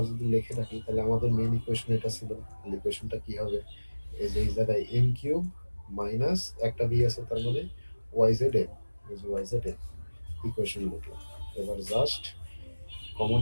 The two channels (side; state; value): both; inverted; correlation -1.00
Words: যদি লিখে রাখি তাহলে আমাদের মেইন ইকুয়েশন এটা ছিল। ইকুয়েশনটা কি হবে? এই যে এই জায়গায় এম কিউব মাইনাস একটা বি আছে, তার মানে ওয়াই জেড এম, এই যে ওয়াই জেড এম ইকুয়েশন লিখলাম। এবার জাস্ট কমন